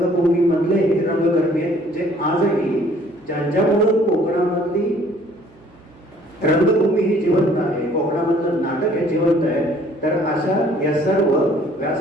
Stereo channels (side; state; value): right; noise; hum, 27 dB below the sound